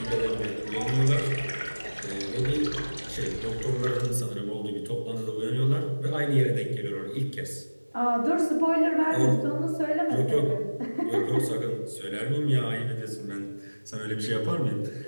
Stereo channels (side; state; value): both; inverted; correlation -1.00